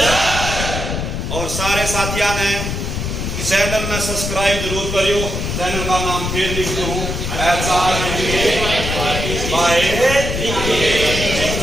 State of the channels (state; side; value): noise; left; rumble, 3 dB below the sound